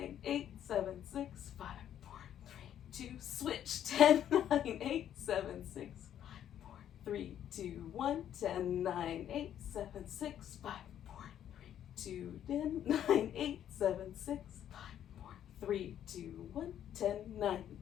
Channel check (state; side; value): quieter; right; 10.4 dB